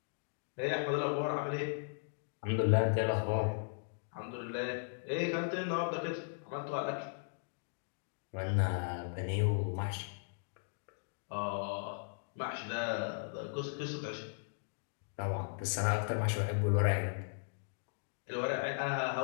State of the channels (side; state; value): right; silent; digital silence